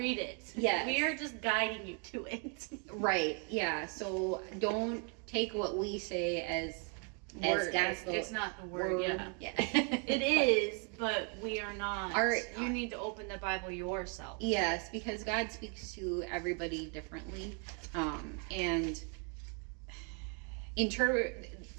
it. Yeah. We are just guiding you to it. Right. Yeah. So don't take what we say as word. God's it's not the word. Yeah. It is, but we are not. You need to open the Bible yourself. Yes, because God speaks to everybody differently, and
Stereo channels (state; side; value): quieter; left; 38.8 dB